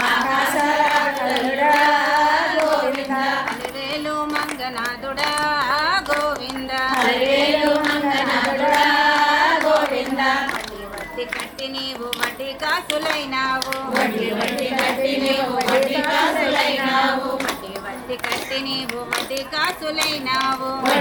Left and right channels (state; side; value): identical; both; correlation 1.00